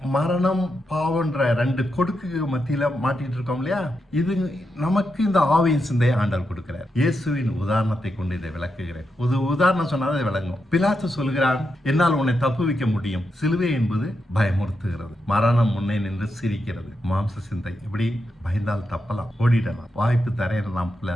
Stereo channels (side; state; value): both; normal; correlation 0.85